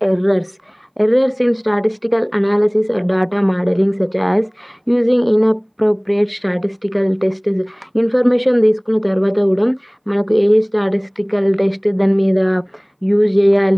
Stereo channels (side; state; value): both; identical; correlation 1.00